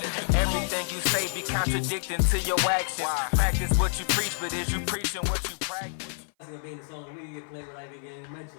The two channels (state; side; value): silent; right; 55 dB below the other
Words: Everything you say be contradicting to your actions. Practice what you preach, but is you preaching what you practice? It's gonna be in the song we get played without even getting